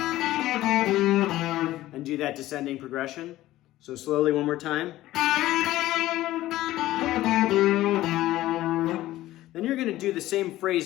and do that descending progression. So slowly one more time. Then you're going to do the same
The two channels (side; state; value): right; quieter; 15.6 dB